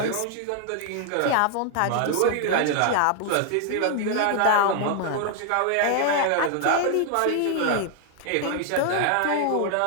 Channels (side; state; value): both; different; correlation 0.00